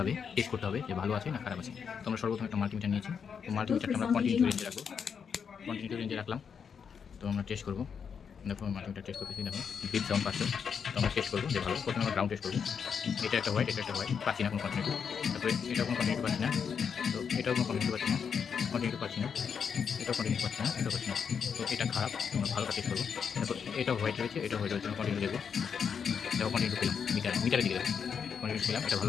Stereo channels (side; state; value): right; quieter; 6.8 dB